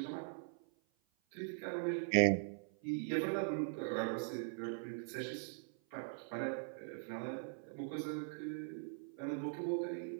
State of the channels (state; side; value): silent; left; 50 dB below the other